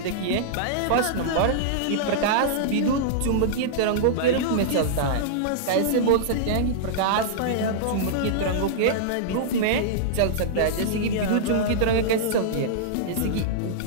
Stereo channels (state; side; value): different; both; correlation -0.02